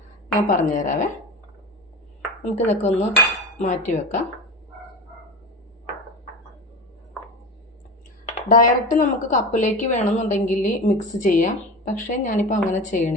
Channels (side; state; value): both; normal; correlation 0.28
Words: ഞാൻ പറഞ്ഞുതരാവേ. നമുക്കിതൊക്കെ ഒന്ന് മാറ്റി വെക്കാം. ഡയറക്റ്റ് നമുക്ക് കപ്പിലേക്ക് വേണമെന്നുണ്ടെങ്കിൽ മിക്സ് ചെയ്യാം, പക്ഷേ ഞാനിപ്പോൾ അങ്ങനെ